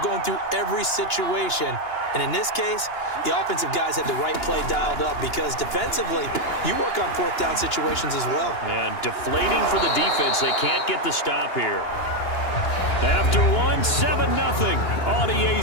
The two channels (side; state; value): right; late; 2.9 ms